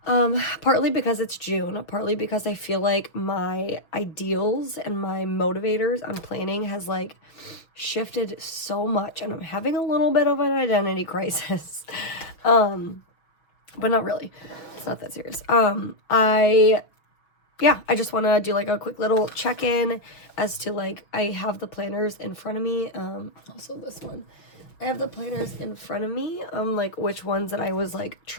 Partly because it's June, partly because I feel like my ideals and my motivators on planning has like shifted so much and I'm having a little bit of an identity crisis. But not really. It's not that serious. I just want to do like a quick little check-in as to like, I have the planners in front of me. Also this one, I have the planners in front of me, like which ones that I was like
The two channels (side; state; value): right; late; 6.1 ms